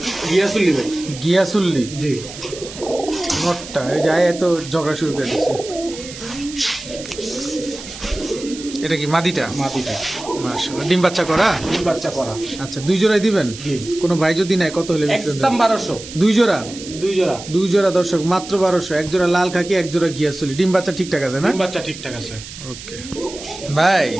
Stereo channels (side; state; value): right; noise; hiss, 13 dB below the sound